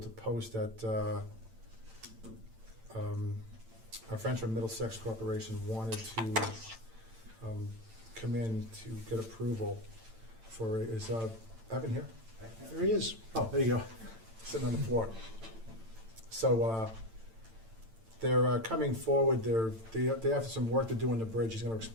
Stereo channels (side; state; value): left; late; 8.9 ms